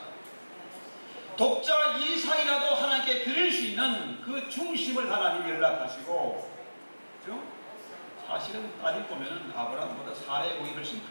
독자 이삭이라도 하나님께 드릴 수 있는 그 중심을 하나님 연락하시고, 그죠? 사실은 따지고 보면 아브라함보다 사례의 공이 훨씬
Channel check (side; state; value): both; inverted; correlation -1.00